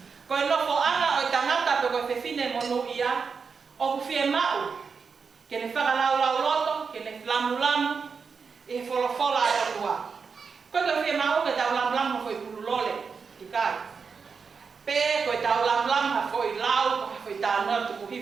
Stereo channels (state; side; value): quieter; left; 5.5 dB